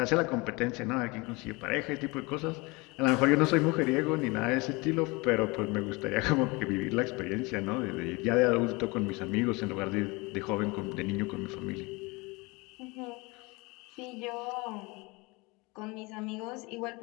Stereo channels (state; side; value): quieter; right; 25.8 dB